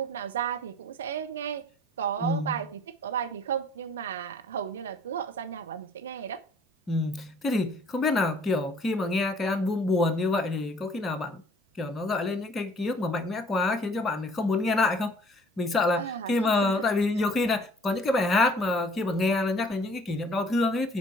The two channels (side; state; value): both; normal; correlation 0.55